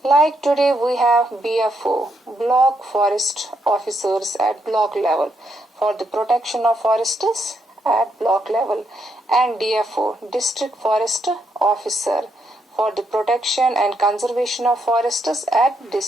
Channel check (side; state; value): both; normal; correlation 0.78